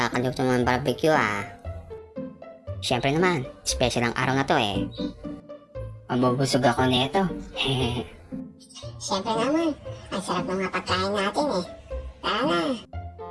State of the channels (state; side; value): identical; both; correlation 1.00